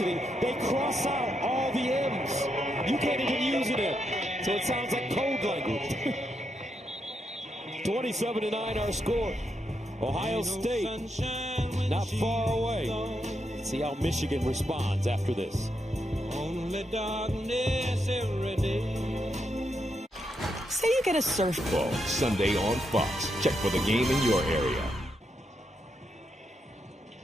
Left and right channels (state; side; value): normal; both; correlation 0.81